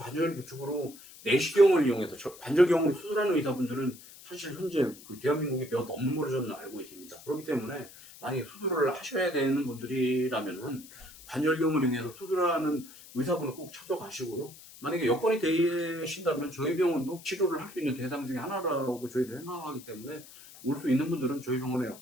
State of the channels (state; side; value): noise; left; hiss, 19 dB below the sound